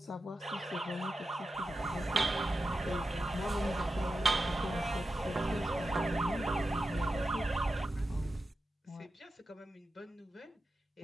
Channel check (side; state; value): both; normal; correlation 0.91